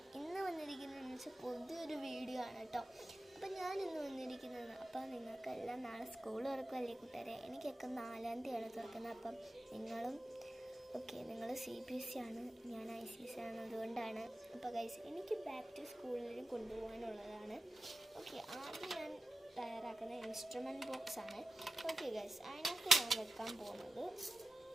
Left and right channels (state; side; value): normal; both; correlation 0.92